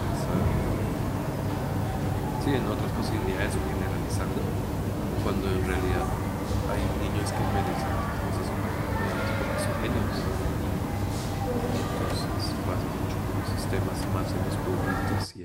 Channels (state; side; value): identical; both; correlation 1.00